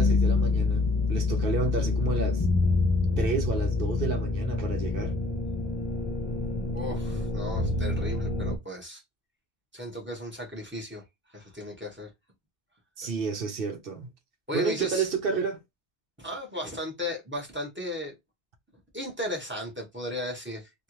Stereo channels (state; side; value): normal; both; correlation 0.51